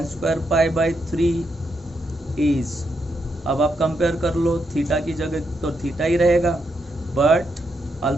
square π/3 is, अब आप compare कर लो, theta की जगह तो थीटा ही रहेगा, बट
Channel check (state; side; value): normal; both; correlation 0.81